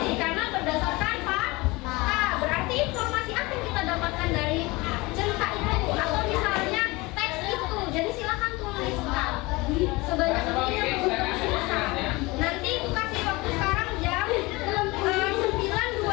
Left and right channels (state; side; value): quieter; right; 23.1 dB